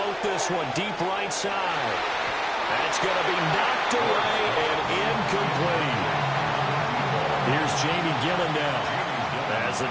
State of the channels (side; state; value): both; identical; correlation 1.00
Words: this one deep right side. That's going to be knocked away and incomplete. Here's Jamie Gillen now. As the